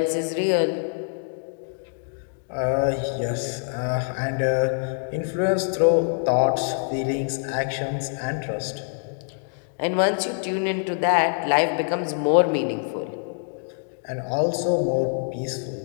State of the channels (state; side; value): silent; right; digital silence